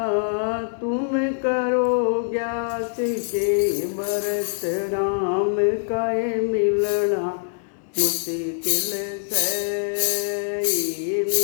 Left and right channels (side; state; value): right; silent; 62 dB below the other